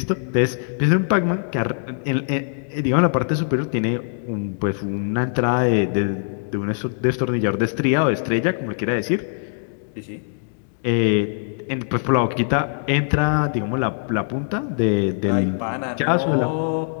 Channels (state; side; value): silent; right; digital silence